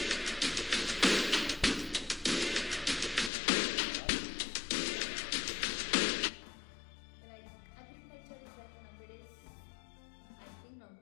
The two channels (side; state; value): right; drops out; at 3.3 s